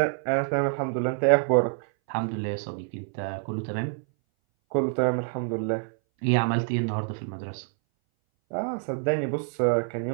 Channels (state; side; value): silent; left; 59 dB below the other